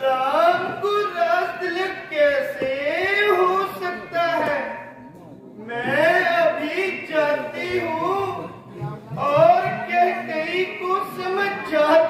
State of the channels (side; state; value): both; identical; correlation 1.00